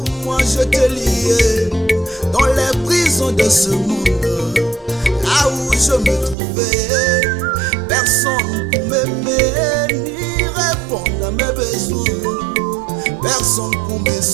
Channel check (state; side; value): drops out; left; at 6.4 s